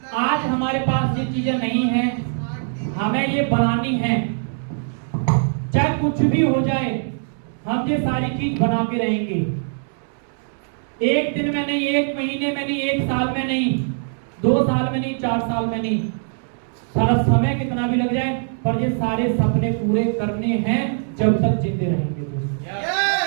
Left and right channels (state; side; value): silent; left; 64 dB below the other